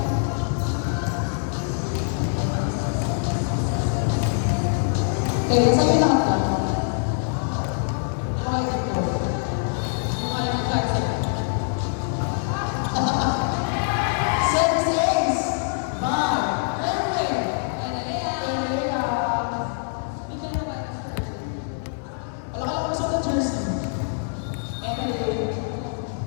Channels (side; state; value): right; silent; digital silence